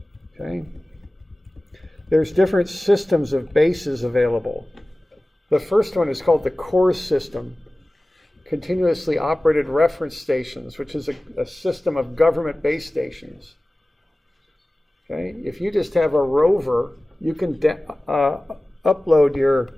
Okay? There's different systems of bases available. The first one is called the core system. continuously operated reference stations, which is a system of government base stations. Okay? If you just have a rover, you can upload your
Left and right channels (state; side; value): normal; both; correlation 0.97